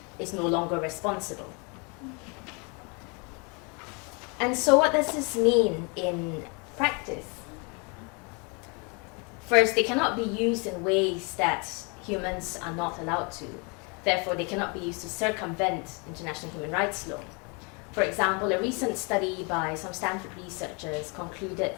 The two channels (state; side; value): quieter; right; 32.2 dB